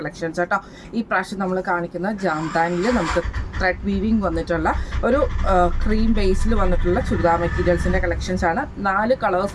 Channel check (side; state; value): both; identical; correlation 1.00